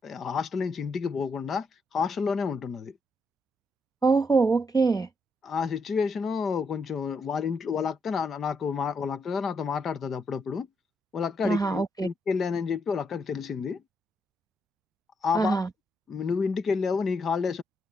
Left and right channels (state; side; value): normal; both; correlation 0.79